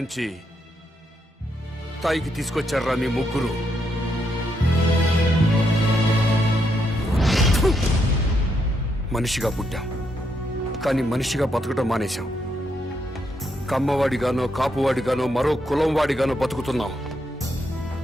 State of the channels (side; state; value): both; normal; correlation 0.79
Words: స్థాయికి తీసుకొచ్చారా మీ ముగ్గురు. మనిషిగా పుట్టాం, కానీ మనిషిగా బతకడం మానేశాం. కమ్మవాడిగానో కాపువాడిగానో మరో కులం వాడిగానో బతుకుతున్నాం.